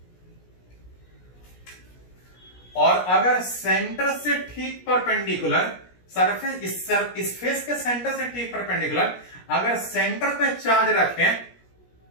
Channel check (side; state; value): right; late; 17 ms